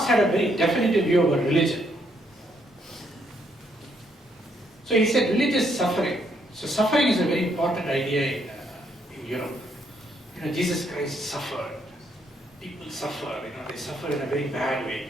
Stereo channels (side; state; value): both; normal; correlation 0.73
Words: had a very definitive view about religion. So he said religious suffering. So suffering is a very important idea in Europe. Jesus Christ suffered. People suffer, they suffer in a very bad